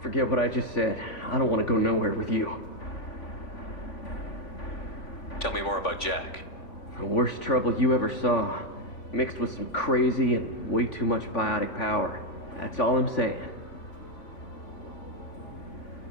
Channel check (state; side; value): late; right; 3.5 ms